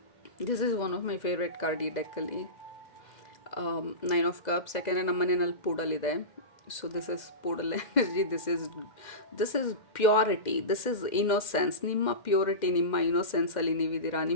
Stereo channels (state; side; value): late; right; 2.1 ms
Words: This is one of my favourite card ಈ ಡೆಕ್ಕಲ್ಲಿ. 9 of cups. ಯಾಕೆಂದರೆ ನಮ್ಮ ಮನೆಯಲ್ಲಿ ಪೂಡಲಿದೆ. So this is poodle energy. This is purity, this is innocence. ನಿಮ್ಮ purity, ನಿಮ್ಮ ಇನ್ನೋಸೆನ್ಸಲ್ಲಿ ನೀವಿದ್ದೀರಾ,